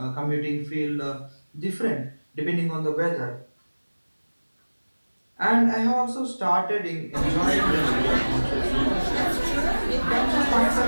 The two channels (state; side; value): inverted; both; correlation -1.00